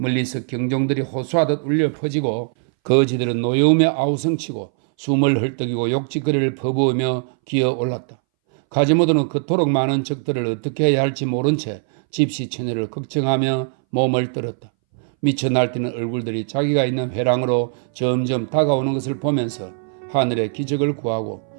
경종들이 호소하듯 울려 퍼지고 거지들은 노여움에 아우성치고 숨을 헐떡이고 욕짓거리를 퍼부으며 기어올랐다. 가지모도는 그토록 많은 적들을 어떻게 해야 할지 모른 채 집시 처녀를 걱정하며 몸을 떨었다. 미쳐 날뛰는 얼굴들이 자기가 있는 회랑으로 점점 다가오는 것을 보면서 하늘의 기적을 구하고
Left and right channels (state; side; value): silent; left; 62 dB below the other